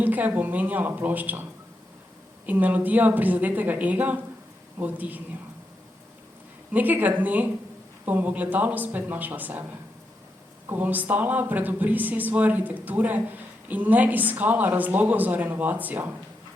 bom menjala ploščo. In melodija prizadetega ega bo utihnila. Nekega dne bom v ogledalu spet našla sebe. Ko bom stala pred obrisi svoje arhitekture in ne iskala razlogov za renovacijo,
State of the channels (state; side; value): normal; both; correlation 0.84